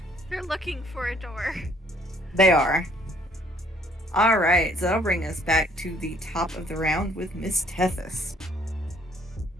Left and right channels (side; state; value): both; normal; correlation 0.62